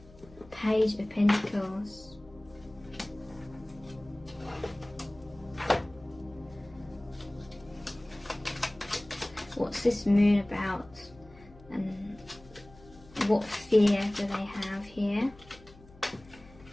Page of Pentacles. What's this moon about? And what fear do they have here?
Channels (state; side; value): noise; left; hum, 22 dB below the sound